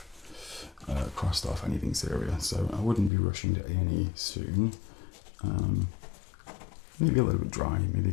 crossed off anything serious, so I wouldn't be rushing to A&E soon. Maybe a little bit dry, maybe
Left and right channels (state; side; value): drops out; right; at 3.1 s